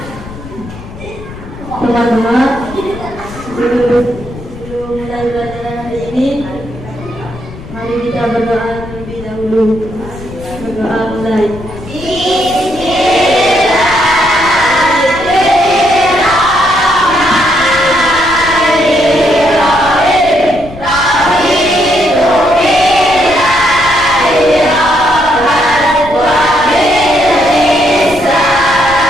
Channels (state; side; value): noise; left; rumble, 15 dB below the sound